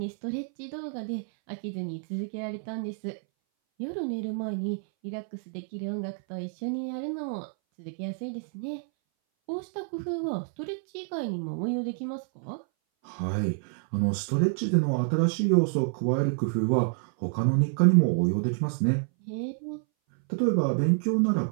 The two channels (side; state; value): left; silent; 59 dB below the other